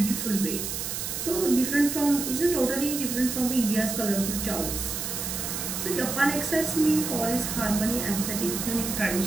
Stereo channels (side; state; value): right; noise; hiss, 4 dB below the sound